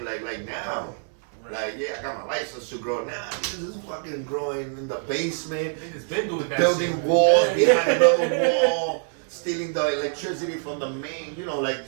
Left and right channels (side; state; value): left; silent; 61 dB below the other